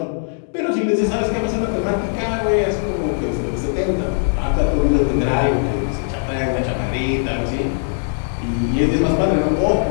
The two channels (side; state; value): right; silent; digital silence